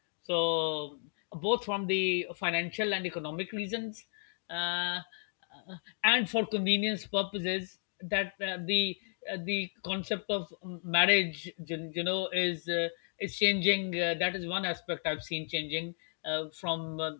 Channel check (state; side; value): silent; right; 55 dB below the other